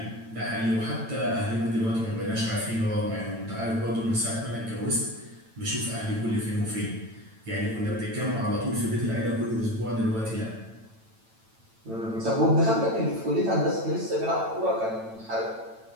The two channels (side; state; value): left; late; 9.0 ms